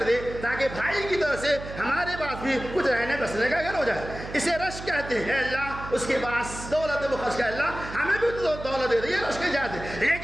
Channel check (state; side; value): noise; right; hum, 11 dB below the sound